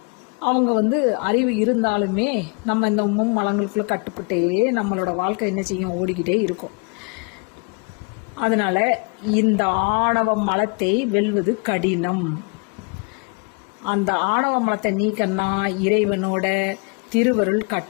அவங்க அறிவு இருந்தாலுமே நம்ம இந்த மும்மலங்களுக்குள்ள கட்டுப்பட்டே நம்மளோட வாழ்க்கை என்ன செய்யும், ஓடிக்கிட்டே இருக்கும். அதனால இந்த ஆணவ மலத்தை வெல்வது கடினம். அந்த ஆணவ மலத்தை நீக்கன்னா இறைவனோட திருவருள்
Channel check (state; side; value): quieter; right; 35.9 dB